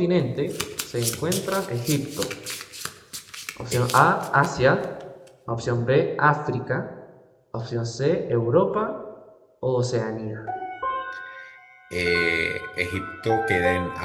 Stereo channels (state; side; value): identical; both; correlation 1.00